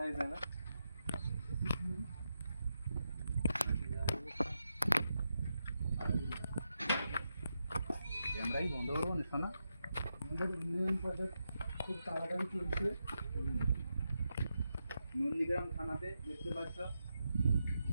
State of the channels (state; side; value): inverted; both; correlation -0.86